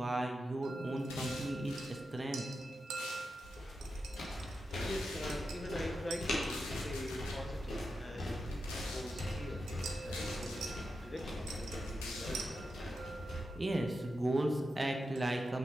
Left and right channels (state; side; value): normal; both; correlation 0.89